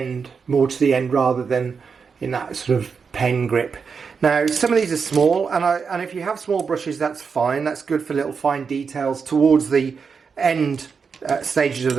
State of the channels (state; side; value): quieter; left; 5.7 dB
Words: more to the end rather than in that sort of pen grip. Now some of these are small, and if you have small brushes, that's fine. That's good for little fine details towards the end stages of